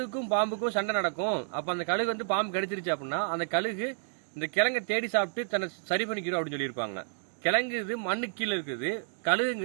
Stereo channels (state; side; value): silent; left; digital silence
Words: பாம்புக்கும் சண்டை நடக்கும். அப்ப அந்த கழுகு வந்து பாம்பு கடிச்சிருச்சு அப்படின்னா அந்த கழுகு இந்த கிழங்கை தேடி சாப்பிட்டு தன்னை சரி பண்ணிக்கிறோம் அப்படின்னு சொல்லியிருப்பாங்க. கிழங்கு இது மண்ணு கீழே இருக்குது,